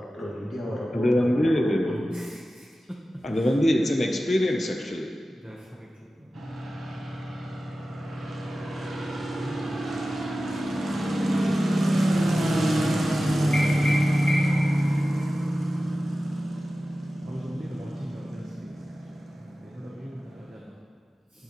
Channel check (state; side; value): normal; both; correlation 0.95